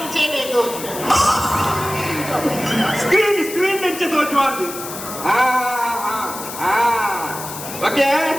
ತೋಜು ಸ್ಕ್ರೀನ್ ಎಂಚ ದೋಜುವಾನ್ ಓಕೆ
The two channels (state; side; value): noise; left; hiss, 10 dB below the sound